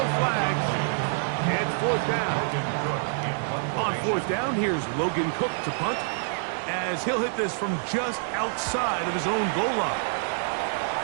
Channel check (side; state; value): left; silent; digital silence